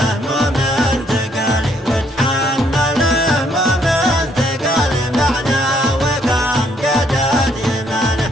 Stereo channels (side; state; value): both; normal; correlation 0.69